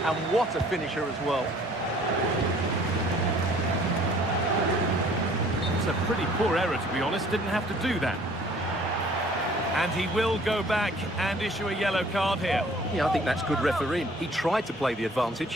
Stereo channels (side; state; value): both; normal; correlation 0.54